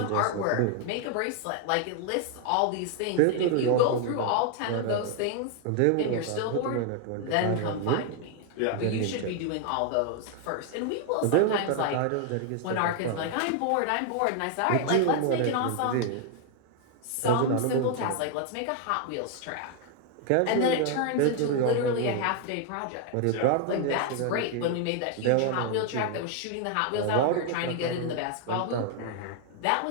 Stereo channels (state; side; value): different; both; correlation 0.00